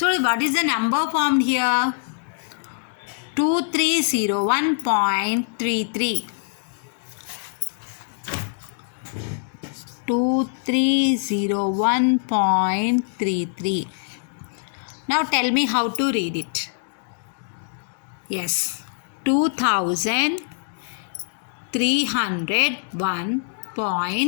what is the number formed here? 2301.33. 2301.33. Now tell me how to read it. Yes,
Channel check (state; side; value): silent; right; digital silence